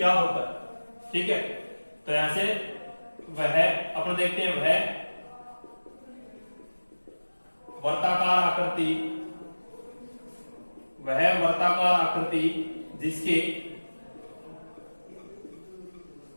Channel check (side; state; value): both; inverted; correlation -1.00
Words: होता है। ठीक है, तो यहां से वह अपन देखते हैं वह वर्ताकार आकृति जिसके